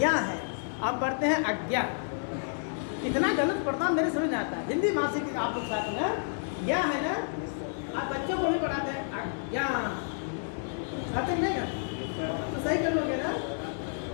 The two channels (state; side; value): silent; right; 58 dB below the other